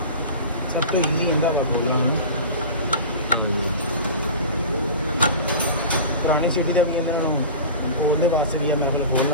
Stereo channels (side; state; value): both; inverted; correlation -0.34